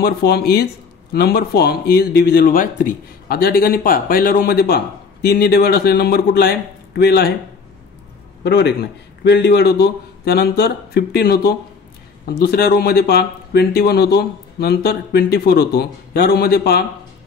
form is divisible by 3. आता या ठिकाणी पहा, पहिल्या रो मध्ये पहा, 3 ने डिवाइड असलेला नंबर कुठला आहे? 12 आहे. बरोबर आहे की नाही? 12 डिवाइड होतो, त्यानंतर 15 होतो. दुसऱ्या रो मध्ये पहा 21 होतो, नंतर 24 होतो. या रो मध्ये पहा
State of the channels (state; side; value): quieter; right; 5.2 dB